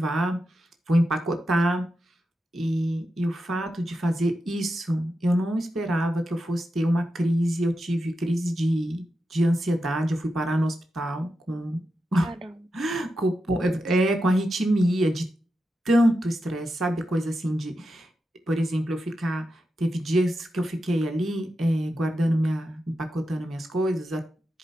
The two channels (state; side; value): normal; both; correlation 0.89